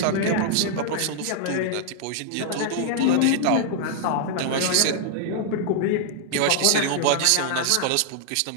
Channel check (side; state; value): both; different; correlation -0.01